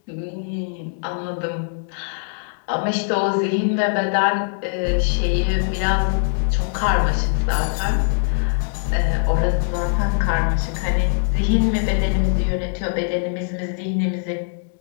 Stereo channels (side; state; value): right; silent; digital silence